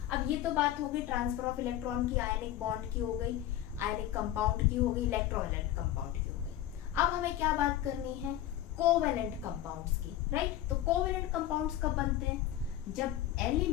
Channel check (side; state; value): right; quieter; 12.7 dB